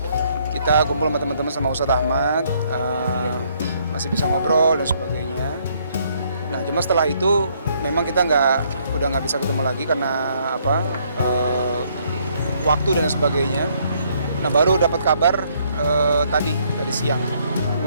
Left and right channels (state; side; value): inverted; both; correlation -0.68